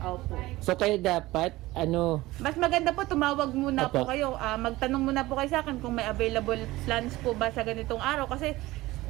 So, kayo dapat, ano, Mas maganda po, tumawag muna po Opo. kayo. Magtanong muna po kayo sa akin kung may available plans po ba sa ganitong araw. Kasi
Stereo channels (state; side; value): quieter; left; 18.4 dB